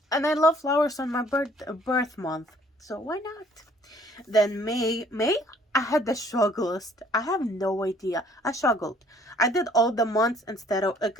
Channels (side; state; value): both; normal; correlation 0.59